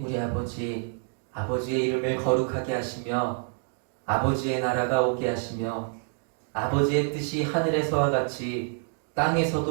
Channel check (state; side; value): silent; left; 55 dB below the other